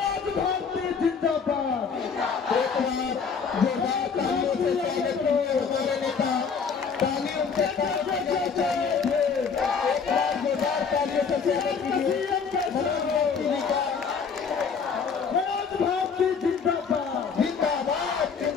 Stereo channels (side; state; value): right; quieter; 5.9 dB